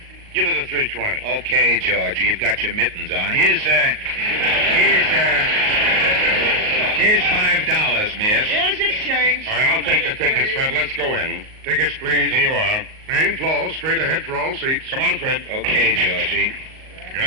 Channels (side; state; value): left; late; 38 ms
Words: give it a $3.20. Okay, Georgie, you've got your mittens on. Here's $5, miss. Here's your change. All right, I'll take the tickets, Fred. Let's go in. Tickets, please. Here you are. Main floor, straight ahead for all seats. Come on, Fred. Okay, Georgie.